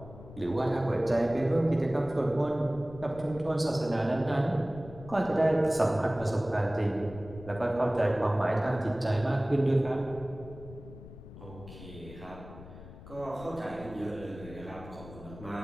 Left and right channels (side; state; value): left; noise; rumble, 16 dB below the sound